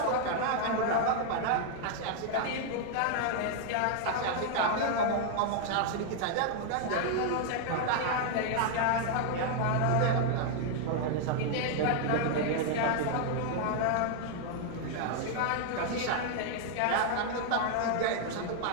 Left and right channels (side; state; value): both; different; correlation 0.00